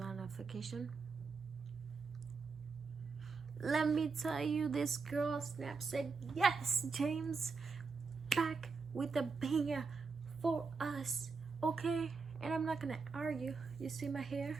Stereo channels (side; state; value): left; quieter; 4.7 dB